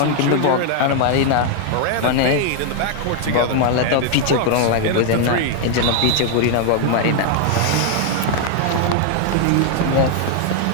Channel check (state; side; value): different; both; correlation 0.00